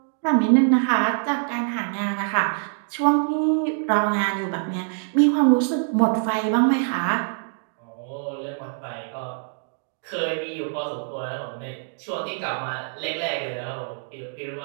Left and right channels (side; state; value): left; silent; digital silence